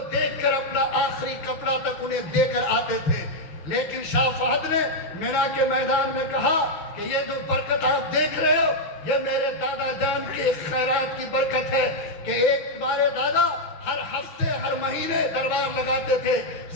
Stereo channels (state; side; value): late; right; 6.4 ms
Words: دیکھ کر اپنا آخری کپڑا تک انہیں دے کر آتے تھے، لیکن شاہ فہد نے مینا کے میدان میں کہا کہ یہ جو برکت آپ دیکھ رہے ہو یہ میرے دادا جان کی خیرات کی برکت ہے کہ ایک تمہارے دادا ہر ہفتے ہر مہینے دربار لگاتے تھے،